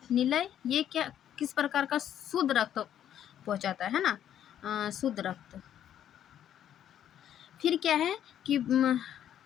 निलय, ये क्या किस प्रकार का शुद्ध रक्त पहुंचाता है ना, शुद्ध रक्त। फिर क्या है कि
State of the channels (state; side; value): quieter; right; 10.4 dB